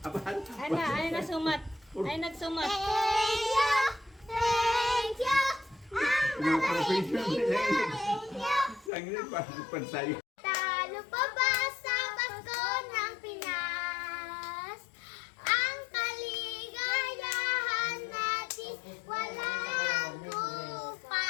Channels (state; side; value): drops out; right; at 8.9 s